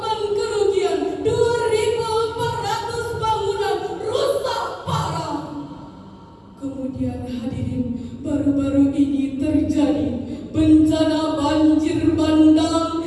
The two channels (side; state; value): both; identical; correlation 1.00